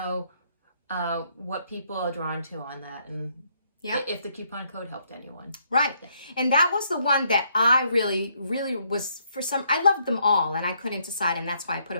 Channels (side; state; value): both; inverted; correlation -0.71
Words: what people are drawn to on that, and if the coupon code helped anyone. Right. And that was the one that I really was, I loved them all and I couldn't decide, and that's why I put